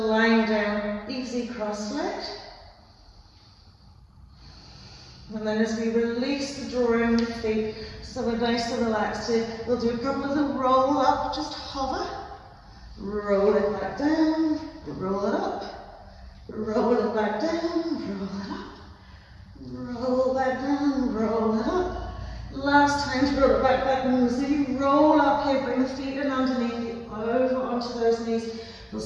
line down, easy cross-legged. And then as we release the drawing the feet, so we're nice and relaxed here, we'll do a couple of them roll up, just hover, roll it back down, roll it up, roll it back down, roll it up, roll back down, roll it up. Last time to roll it back easy, roll up here, bring the feet in underneath you, over onto those knees. We'll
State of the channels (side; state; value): both; identical; correlation 1.00